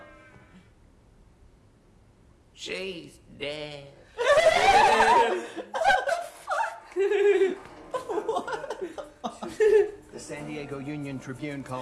She's dead. The San Diego Union Tribune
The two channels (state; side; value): identical; both; correlation 1.00